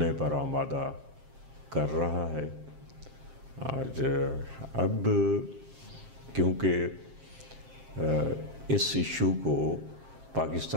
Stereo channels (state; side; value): late; left; 7.5 ms